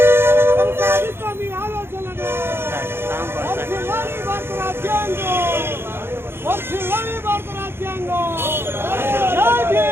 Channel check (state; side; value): late; left; 0.11 ms